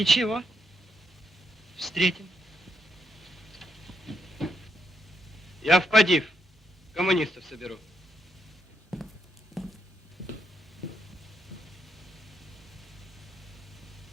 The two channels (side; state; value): both; normal; correlation 0.78